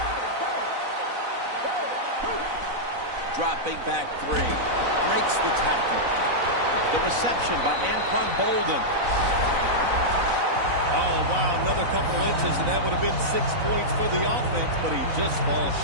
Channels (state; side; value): late; left; 4.0 ms